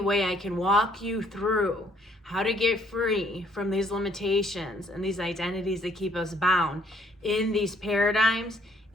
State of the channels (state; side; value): normal; both; correlation 0.64